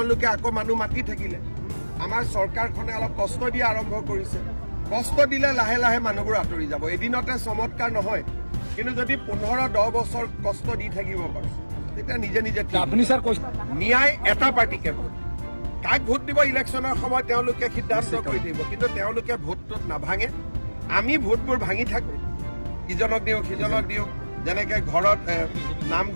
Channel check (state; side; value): inverted; both; correlation -1.00